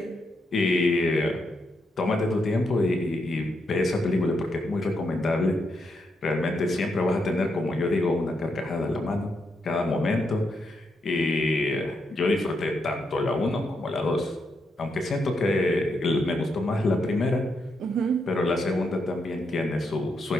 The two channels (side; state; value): both; normal; correlation 0.81